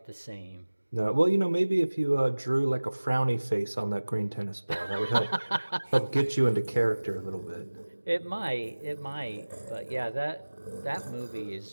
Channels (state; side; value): inverted; both; correlation -1.00